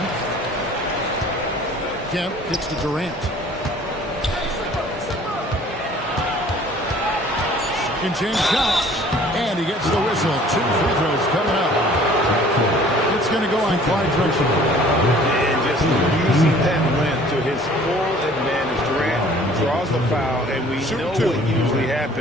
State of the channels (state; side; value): normal; both; correlation 0.52